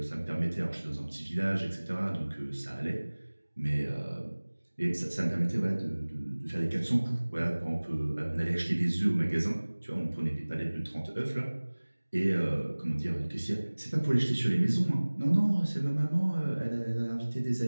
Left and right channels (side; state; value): both; inverted; correlation -1.00